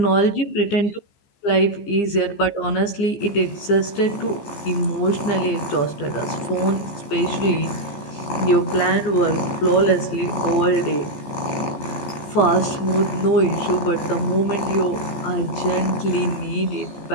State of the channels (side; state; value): right; late; 15 ms